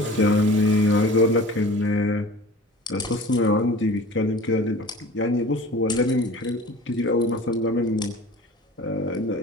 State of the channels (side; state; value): both; normal; correlation 0.41